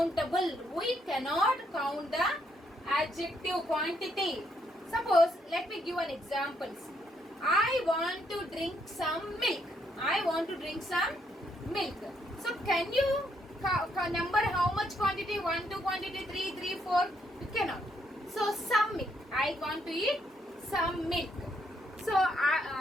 We cannot count the adjective quantity. Suppose let me give an example. I want to drink some milk. I want to drink some milk. So can you number how much quantity? 1, 2 quantity, 3, 3, 4. You cannot. So some milk. I want to eat some milk. So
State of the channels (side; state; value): both; normal; correlation 0.74